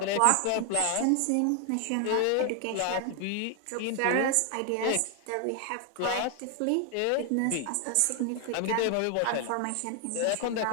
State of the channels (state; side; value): different; both; correlation 0.00